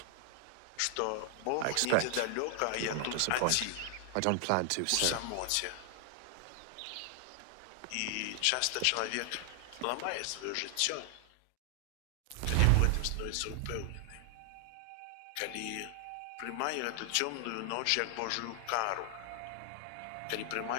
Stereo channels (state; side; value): different; both; correlation 0.00